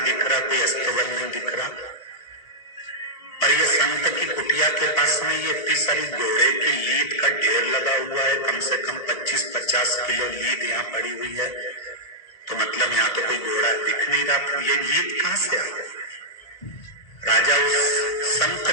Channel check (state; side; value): late; right; 1.8 ms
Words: दिख रहा, कोई अस्तबल नहीं दिख रहा, पर ये संत की कुटिया के पास में ये इतनी सारी घोड़े की लीद का ढेर लगा लगा हुआ है, कम से कम 25-50 किलो लीद यहाँ पड़ी हुई है, तो मतलब यहाँ तो कोई घोड़ा दिख नहीं रहा। ये लीद कहां से आ गई? राजा उस संत